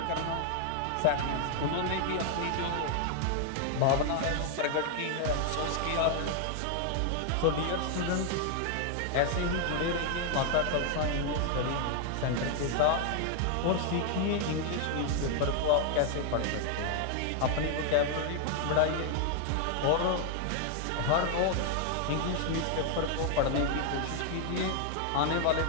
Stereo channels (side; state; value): both; different; correlation 0.00